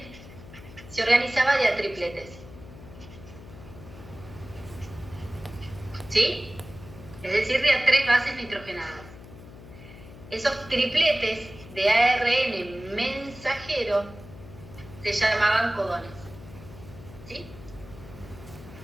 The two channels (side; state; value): left; noise; hum, 17 dB below the sound